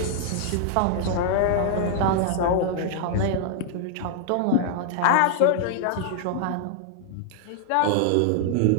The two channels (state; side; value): different; both; correlation 0.00